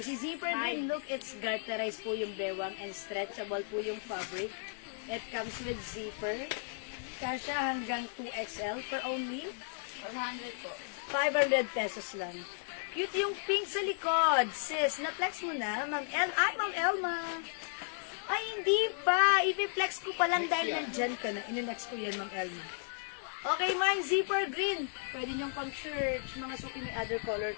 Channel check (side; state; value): right; silent; digital silence